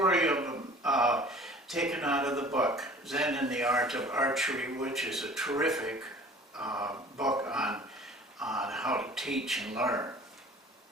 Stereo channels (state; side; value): normal; both; correlation 0.47